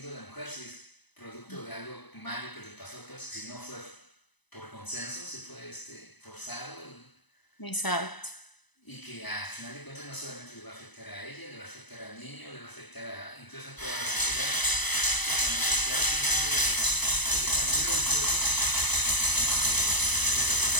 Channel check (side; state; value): right; late; 1.0 ms